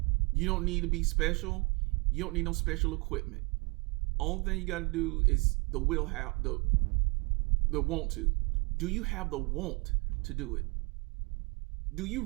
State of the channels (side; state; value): left; quieter; 28.7 dB